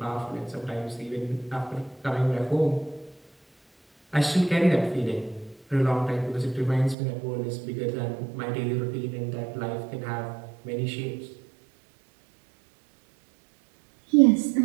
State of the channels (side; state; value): left; drops out; at 7.0 s